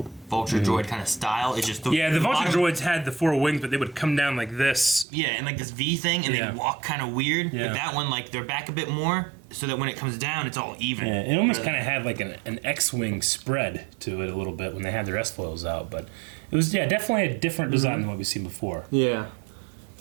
Vulture droid kind of style. It's just The Vulture droids had the four wings, but they would come down like this. Yeah, and like this V thing, and Yeah. they walk kind of weird. Yeah. But that one, like, they're back a bit more, so that when it comes down, it's all even. Yeah, it almost kind of had like an X-wing spread to it a little bit when they had their S-foils out, but it was definitely a different design than what we've seen before. Yeah.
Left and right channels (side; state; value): left; drops out; at 5.1 s